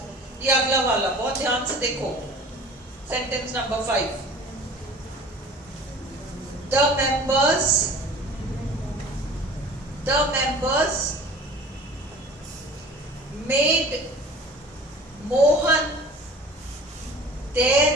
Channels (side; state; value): both; normal; correlation 0.44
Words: ये अगला वाला बहुत ध्यान से देखो, sentence number 5, the members made Mohan their